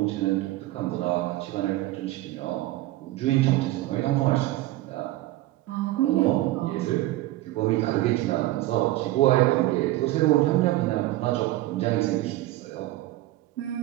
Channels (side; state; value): left; quieter; 16.7 dB